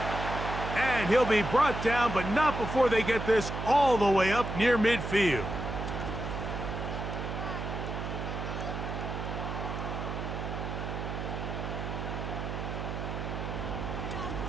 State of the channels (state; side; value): noise; right; hum, 4 dB below the sound